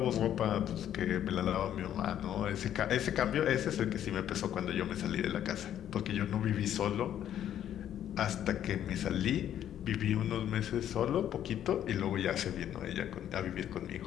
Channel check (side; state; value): right; quieter; 10.6 dB